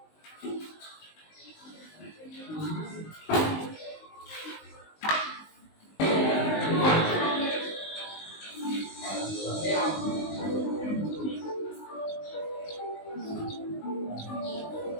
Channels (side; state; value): right; late; 19 ms